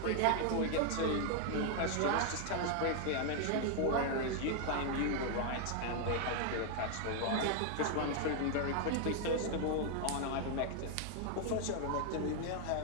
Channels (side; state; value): both; different; correlation 0.00